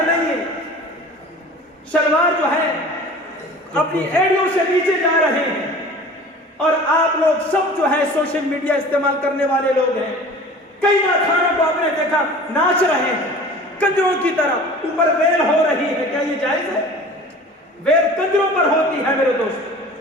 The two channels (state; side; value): normal; both; correlation 0.42